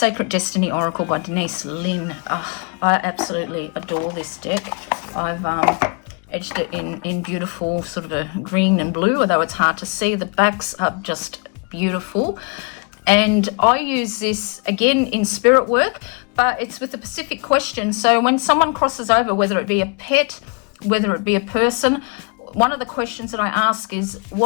Destiny Oracle by Denise Lynn. Oh, I absolutely adore this deck. I've edged it in beautiful sort of a green and blue, although it's hard to see. The backs are just beautiful. And I use this again in spirit work, but it's with a specific question. So when someone crosses over, whether it be a pet, whether it be a person, one of the questions that I ask is,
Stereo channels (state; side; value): quieter; right; 34.6 dB